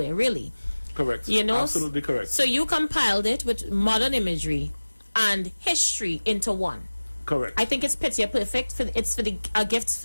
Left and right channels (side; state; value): both; inverted; correlation -1.00